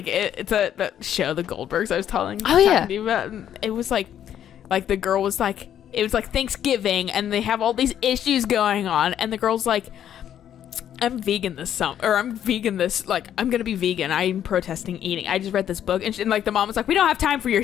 that show, The Goldbergs. I was talking Oh, yeah. to you about. And it was like the girl was like, it was like Thanksgiving, and they have all these issues going on, and the girl's like, I'm vegan this summer, or I'm vegan this, like, I'm gonna be vegan. I'm protesting eating. I just read this book, and like the mom was like, we don't have time for your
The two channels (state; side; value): quieter; right; 10.2 dB